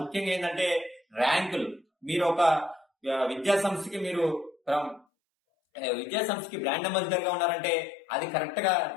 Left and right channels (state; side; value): drops out; right; at 5.1 s